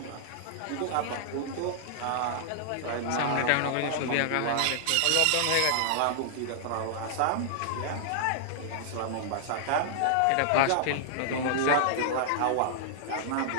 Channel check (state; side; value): different; both; correlation -0.01